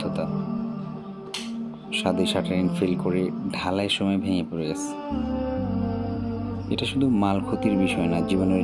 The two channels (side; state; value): both; identical; correlation 1.00